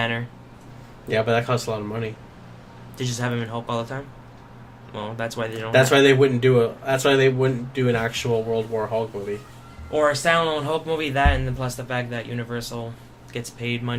Yeah, but that costs a lot of money. To just have him in Hulk all the time. Well, that's why they don't. That's why they wouldn't do an actual World War Hulk movie. Or a standalone Hulk movie. That, and then plus the fact that Universal gets paid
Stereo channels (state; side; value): identical; both; correlation 1.00